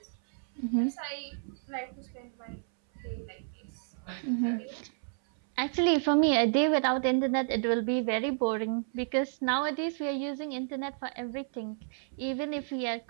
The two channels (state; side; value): silent; left; 57 dB below the other